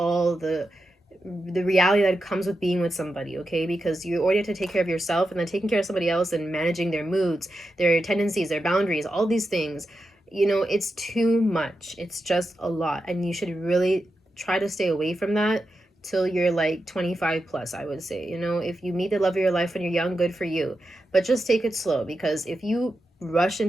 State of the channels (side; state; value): both; normal; correlation 0.88